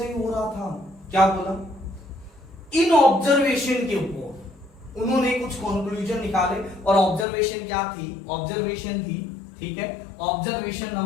ही हो रहा था। क्या बोला, इन ऑब्जर्वेशन के ऊपर उन्होंने कुछ कंक्लूजन निकाले और ऑब्जर्वेशन क्या थी, ऑब्जर्वेशन थी, ठीक है, ऑब्जर्वेशन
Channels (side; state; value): right; drops out; at 7.2 s